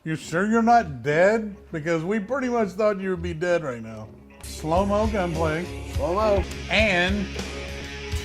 You sure you're not dead? Because we pretty much thought you would be dead right now. Slow-mo gunplay. Slow-mo. And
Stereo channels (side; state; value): both; identical; correlation 1.00